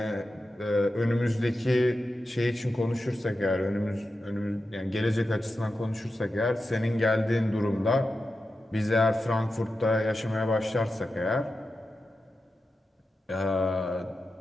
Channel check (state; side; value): normal; both; correlation 0.91